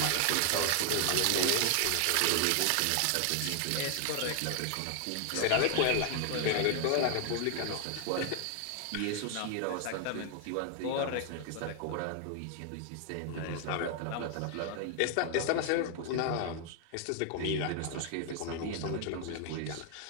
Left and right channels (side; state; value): both; different; correlation 0.00